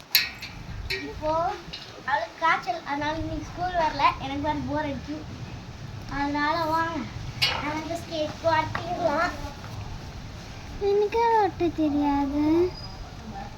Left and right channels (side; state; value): both; identical; correlation 1.00